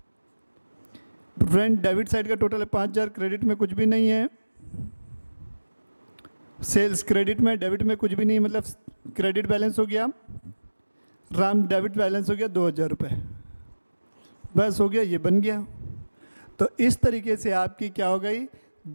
रेंट डेबिट साइड का टोटल है 5,000, क्रेडिट में कुछ भी नहीं है। सेल्स क्रेडिट में, डेबिट में कुछ भी नहीं, मतलब क्रेडिट बैलेंस हो गया। राम डेबिट बैलेंस हो गया 2,000 रुपये, बस हो गया, ये बन गया। तो इस तरीके से आपकी क्या हो गई,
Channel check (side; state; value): both; inverted; correlation -1.00